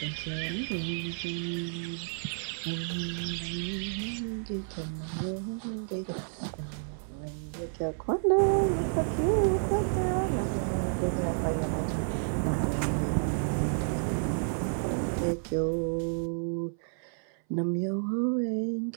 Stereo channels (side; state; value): left; silent; 57 dB below the other